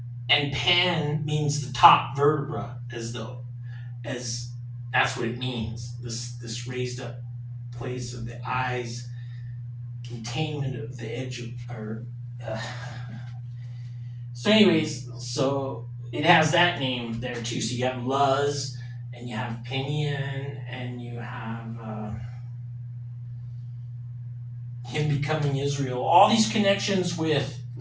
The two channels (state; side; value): identical; both; correlation 1.00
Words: and pan means the top vertebra, as that's what it means, this raised up place of the eyes, containment of the edge of, or uh, so anyways, so it has that name there too. So you have Luz, and you have Pinion, and you have him becoming Israel. All these connections with